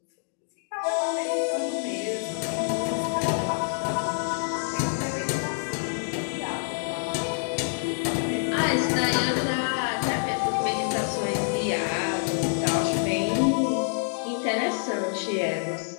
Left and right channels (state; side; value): silent; right; digital silence